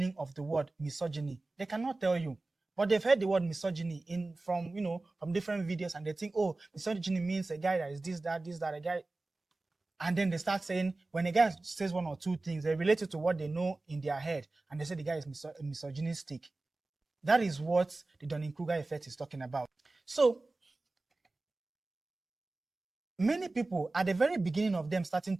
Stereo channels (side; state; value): left; quieter; 3.2 dB